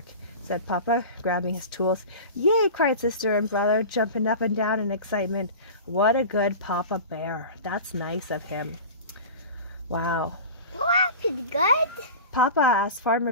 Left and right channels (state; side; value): inverted; both; correlation -0.34